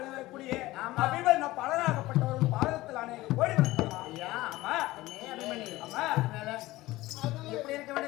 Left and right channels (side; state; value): right; quieter; 18.1 dB